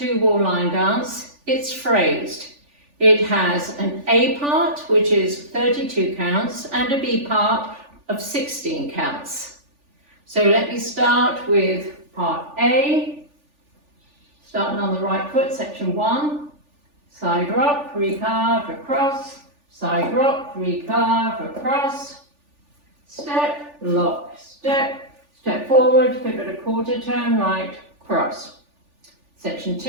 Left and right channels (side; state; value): left; late; 3.4 ms